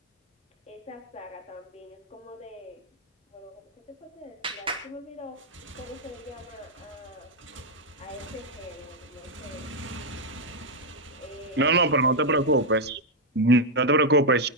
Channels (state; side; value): normal; both; correlation 0.01